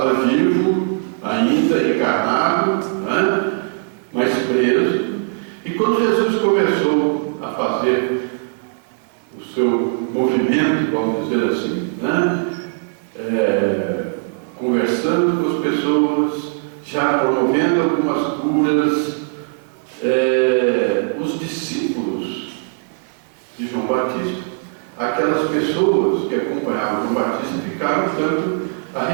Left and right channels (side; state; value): left; silent; digital silence